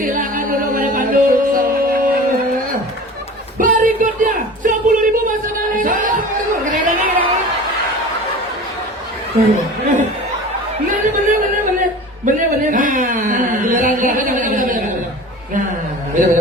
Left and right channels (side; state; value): both; normal; correlation 0.38